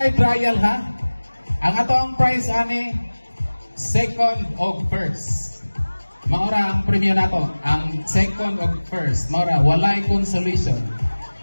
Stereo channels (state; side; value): inverted; both; correlation -1.00